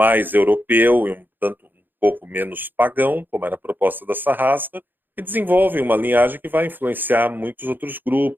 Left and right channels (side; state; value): left; late; 0.092 ms